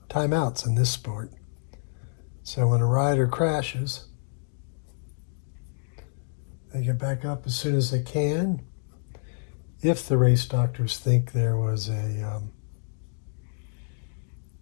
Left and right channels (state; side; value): silent; right; digital silence